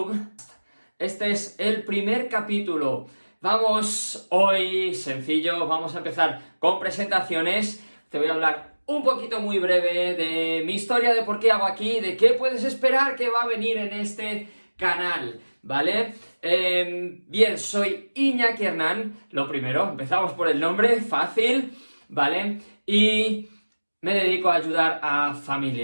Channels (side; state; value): both; inverted; correlation -1.00